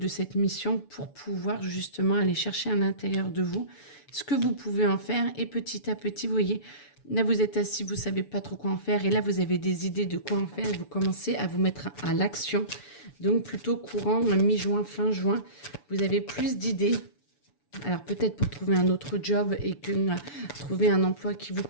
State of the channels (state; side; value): late; right; 7.0 ms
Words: cette mission pour pouvoir justement aller chercher à l'intérieur de vous ce que vous pouvez en faire et petit à petit, vous voyez, là, vous êtes assis, vous ne savez pas trop quoi en faire. Et là, vous avez des idées de quoi en faire. Et vous commencez à vous mettre à l'action. Donc, plutôt courant, mi-juin, fin juin, vous avez plus d'idées. Alors, peut-être pour trouver un autre job et que trouver un emploi qui vous